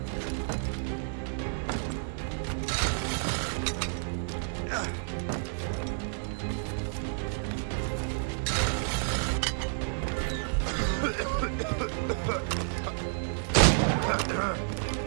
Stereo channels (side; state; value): left; silent; digital silence